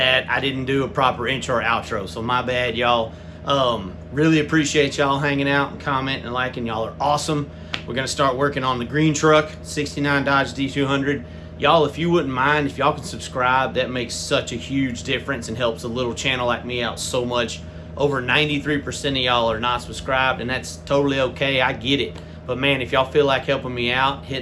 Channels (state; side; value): identical; both; correlation 1.00